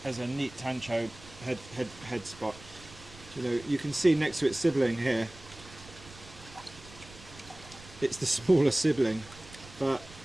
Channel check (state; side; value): noise; right; rumble, 19 dB below the sound